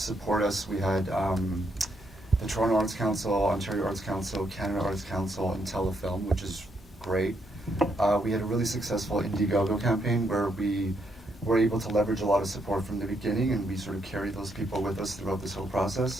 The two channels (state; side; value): normal; both; correlation 0.76